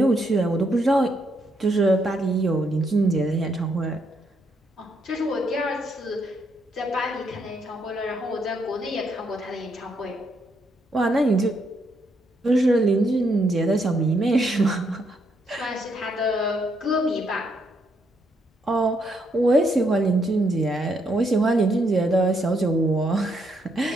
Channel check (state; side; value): normal; both; correlation 0.76